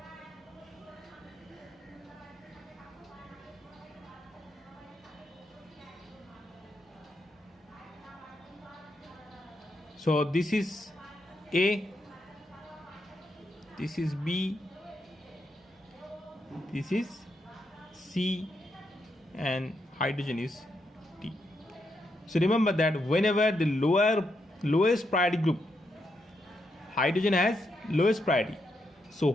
So this is A, this is B, this is C, and hydrogen is D. So remember that whenever the lowest priority group, hydrogen has lowest priority. So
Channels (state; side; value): normal; both; correlation 0.81